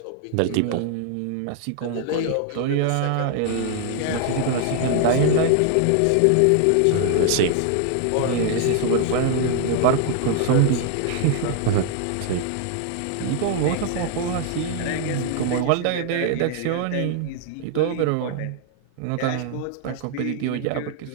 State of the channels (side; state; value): both; different; correlation 0.00